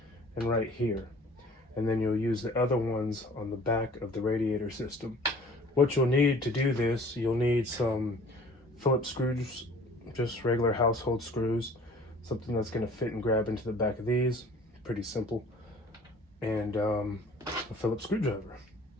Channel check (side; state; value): both; normal; correlation 0.49